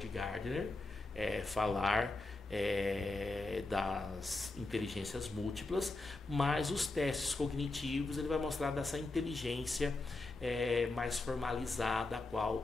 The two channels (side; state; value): right; quieter; 3.1 dB